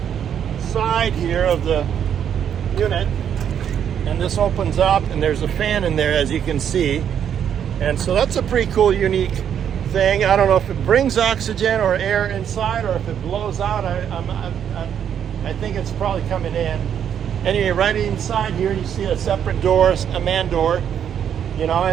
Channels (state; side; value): quieter; left; 8.8 dB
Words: side here of the unit. And this opens up, and there's a fan in there, as you can see. And so that's a pretty cool, unique thing. I don't know if it brings oxygen or air inside, or if it blows out. I think it's probably coming in. Anyway, right inside here, you see a separate door, a man door,